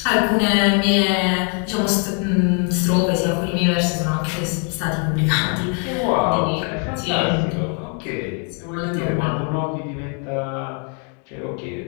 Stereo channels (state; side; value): quieter; right; 39.8 dB